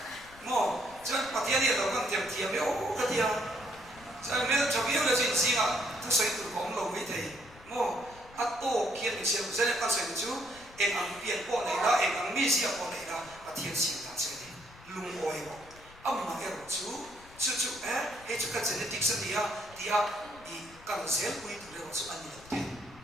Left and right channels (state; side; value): noise; left; rumble, 22 dB below the sound